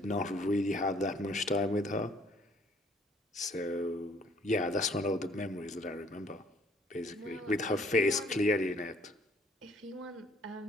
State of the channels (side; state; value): both; normal; correlation 0.61